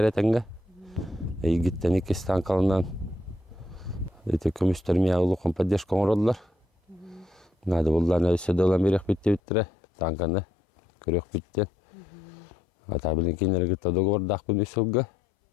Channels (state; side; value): drops out; right; at 9.4 s